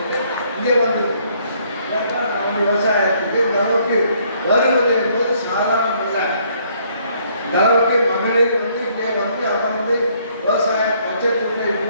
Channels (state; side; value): inverted; both; correlation -0.66